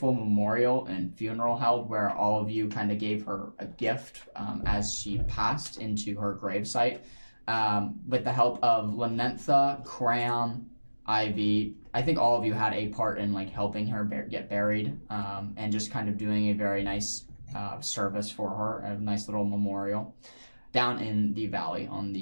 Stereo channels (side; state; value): both; inverted; correlation -1.00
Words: memorial and funeral held where all of you kind of gave her a gift as she passed into her gravesite. With the help of Lanentha, Cram, Ivy, I think all of you had a part in like helping her get buried, and just kind of doing a very nice service for her, a nice little memorial down in the valley on